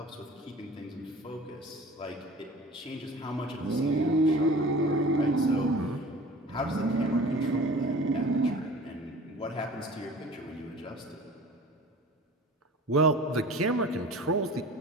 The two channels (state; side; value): normal; both; correlation 0.42